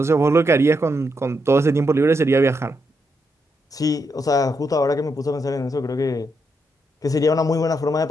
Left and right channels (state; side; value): normal; both; correlation 0.81